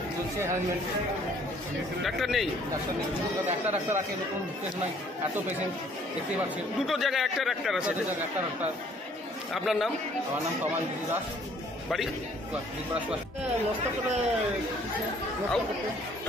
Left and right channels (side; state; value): both; normal; correlation 0.60